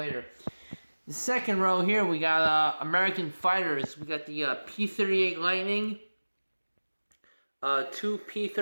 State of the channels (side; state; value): both; inverted; correlation -1.00